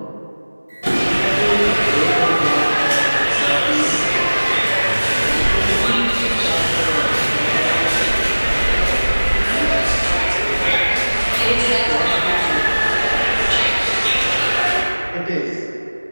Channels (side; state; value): both; inverted; correlation -1.00